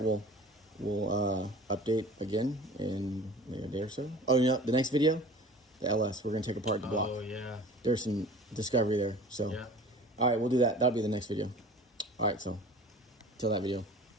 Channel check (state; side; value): normal; both; correlation 0.43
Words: well. We'll update again in maybe a day or so. Oh, the next video, the LS, we're going to take apart the block. Oh, yeah. There's some discovery there. So, yeah. All right, we'll do that. That'll be the next video. All right, so Till that video.